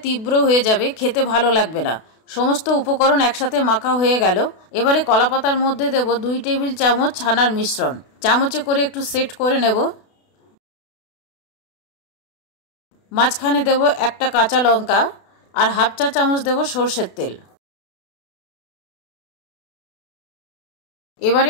তীব্র হয়ে যাবে, খেতে ভালো লাগবে না। সমস্ত উপকরণ একসাথে মাখা হয়ে গেল। এবারে কলাপাতার মধ্যে দেব 2 টেবিল চামচ ছানার মিশ্রণ। চামচে করে একটু সেট করে নেব। মাঝখানে দেব একটা কাঁচা লঙ্কা আর হাফ চা চামচ দেব সর্ষের তেল।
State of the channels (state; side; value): late; right; 32 ms